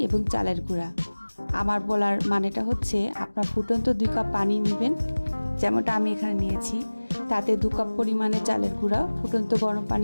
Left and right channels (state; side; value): inverted; both; correlation -1.00